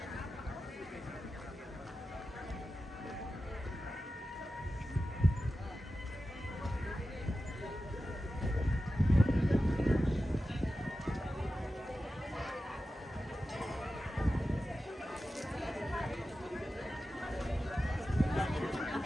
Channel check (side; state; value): both; normal; correlation 0.93